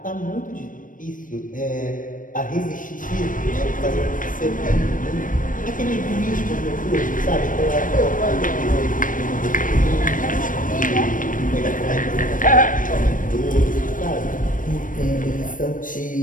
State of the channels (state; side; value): late; right; 0.38 ms